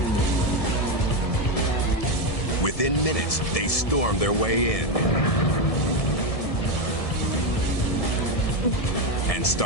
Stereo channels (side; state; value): right; late; 1.7 ms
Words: Within minutes, they storm their way in and